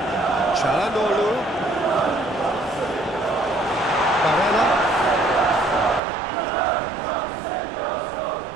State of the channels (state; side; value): drops out; left; at 6.0 s